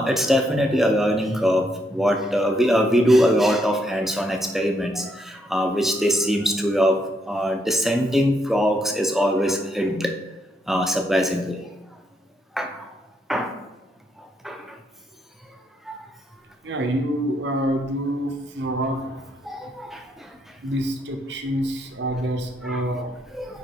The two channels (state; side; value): normal; both; correlation 0.76